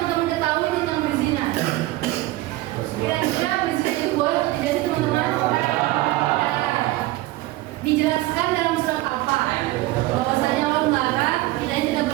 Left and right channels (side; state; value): left; quieter; 18.2 dB